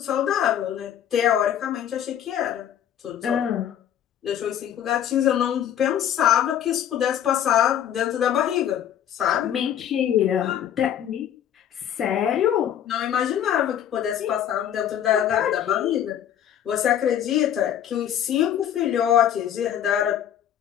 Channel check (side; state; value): right; quieter; 10.2 dB